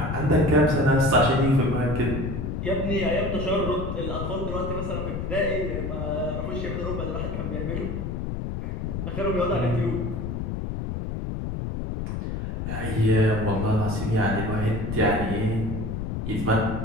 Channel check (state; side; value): noise; left; rumble, 3 dB below the sound